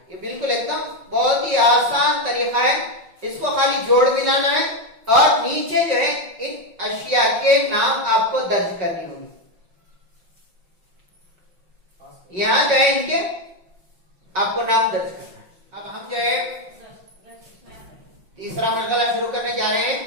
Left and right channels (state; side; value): late; left; 5.3 ms